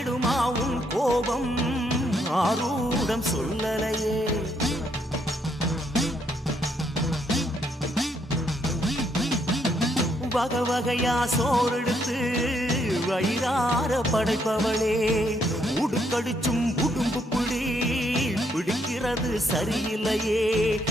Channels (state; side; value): normal; both; correlation 0.73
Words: உன் கோபம் ஆரூடம் சொல்லலையே. வகை வகையா சோறெடுத்து வயிறார படைப்பவளே, உடுக்கடிச்சும் உடும்பு பிடிக்கிறது சரியில்லையே.